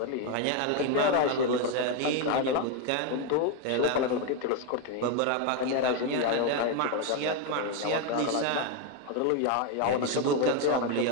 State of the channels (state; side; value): different; both; correlation 0.02